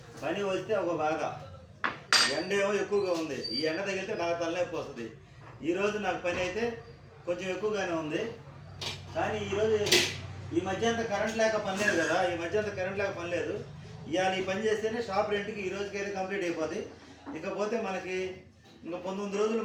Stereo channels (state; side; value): identical; both; correlation 1.00